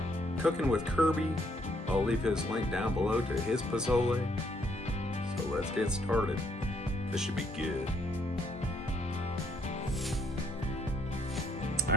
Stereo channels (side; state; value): both; normal; correlation 0.70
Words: cooking with Kirby. I'll leave his link down below to his pozole. So let's get started. This should be good. All